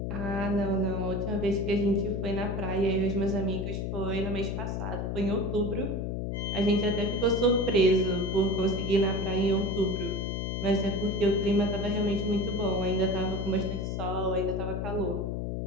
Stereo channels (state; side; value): noise; left; hum, 2 dB below the sound